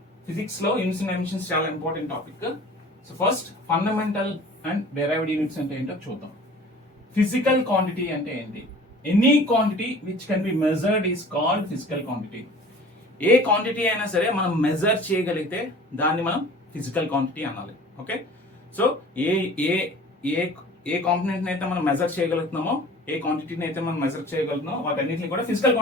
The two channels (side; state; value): both; normal; correlation 0.45